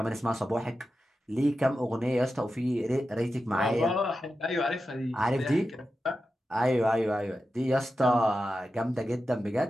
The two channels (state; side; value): normal; both; correlation 0.91